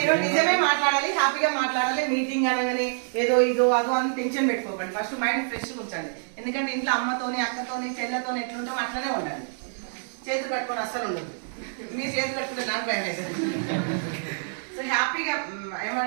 నిజమే మాట్లాడాలి, హ్యాపీగా మాట్లాడాలి. మీటింగ్ అనగానే ఏదో ఇదో అదో అని టెన్షన్ పెట్టుకోకండి. ఫస్ట్ మైండ్ ఫ్రెష్ ఉంచండి. ఎందుకంటే ఇంట్లో అమ్మతోని, అక్కతోని, చెల్లెతోని ఎట్లుంటాం అట్లనే ఉండాలి. చేతులు కట్టుకొని అస్సలు ఉండదు. మీరు చేతులు కట్టుకుంటే నాకు భయం అవుతుంది. సో హ్యాపీగా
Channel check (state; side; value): silent; left; digital silence